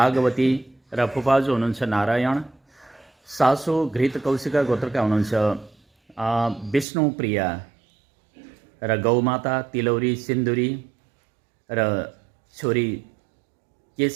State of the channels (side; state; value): left; drops out; at 6.9 s